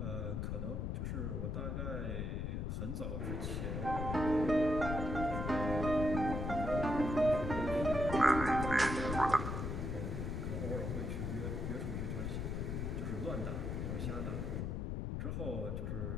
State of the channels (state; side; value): noise; left; rumble, 2 dB below the sound